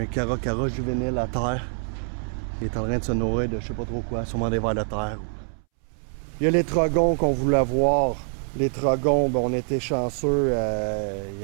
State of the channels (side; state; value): left; silent; 62 dB below the other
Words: caracara juvénile à terre. Il est en train de se nourrir de je sais pas trop quoi, sûrement des vers de terre. Il y a les trogons qu'on voulait voir. Les trogons, on était chanceux.